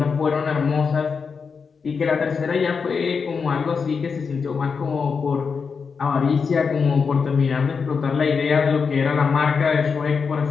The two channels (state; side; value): quieter; right; 5.5 dB